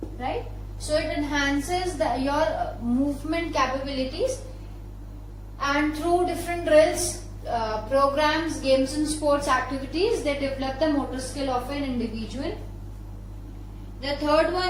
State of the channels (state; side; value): identical; both; correlation 1.00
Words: Right? So it enhances your movement capabilities, and through different drills, programs, games and sports activities, they develop the motor skill of an individual. The third